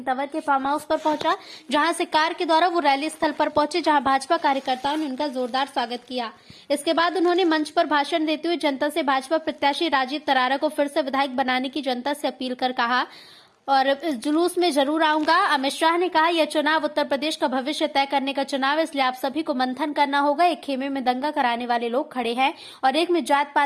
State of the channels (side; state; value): both; identical; correlation 1.00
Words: तंवर के फार्म हाउस पर पहुंचा, जहां से कार के द्वारा वो रैली स्थल पर पहुंचे, जहां भाजपा कार्यकर्ताओं ने उनका जोरदार स्वागत किया। इसके बाद उन्होंने मंच पर भाषण देते हुए जनता से भाजपा प्रत्याशी राजीव तरारा को फिर से विधायक बनाने की जनता से अपील कर कहा और इस जुलूस में जरूर आऊंगा। अमित शाह ने कहा, यह चुनाव उत्तर प्रदेश का भविष्य तय करने का चुनाव है, इसलिए आप सभी को मंथन करना होगा। एक खेमे में दंगा कराने वाले लोग खड़े हैं और एक में जात